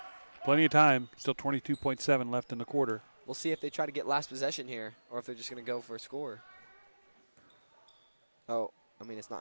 Plenty of time. Still 22.7 left in the quarter. We'll see if they try to get last possession here, or if they're just going to go for a score. Oh, I mean it's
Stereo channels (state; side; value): inverted; both; correlation -1.00